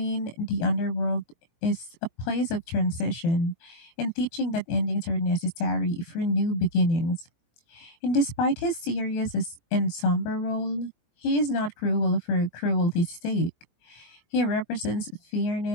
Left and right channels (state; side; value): late; right; 18 ms